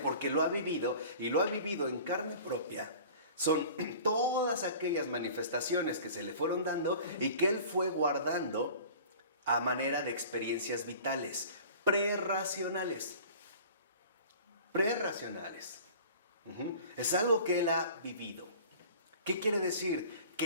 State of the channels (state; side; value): inverted; both; correlation -0.43